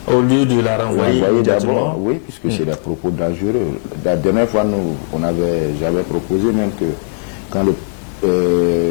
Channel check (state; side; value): silent; right; 69 dB below the other